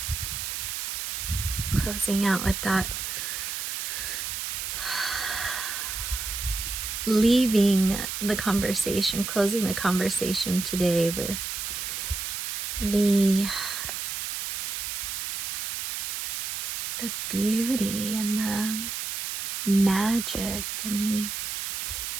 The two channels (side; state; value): right; noise; hiss, 4 dB below the sound